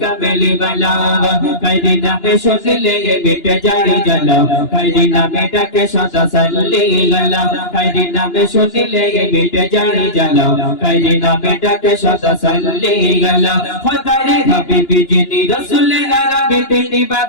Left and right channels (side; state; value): right; late; 2.9 ms